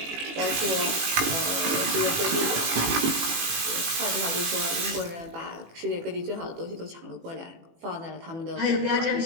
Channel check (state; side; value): late; left; 18 ms